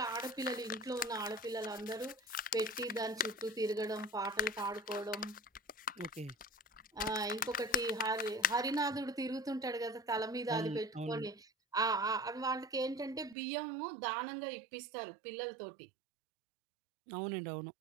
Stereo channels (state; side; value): drops out; left; at 13.4 s